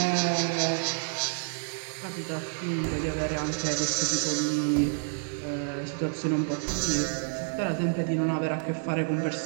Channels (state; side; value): silent; left; digital silence